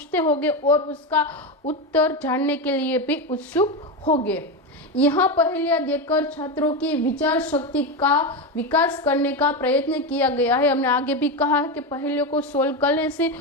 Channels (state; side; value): normal; both; correlation 0.14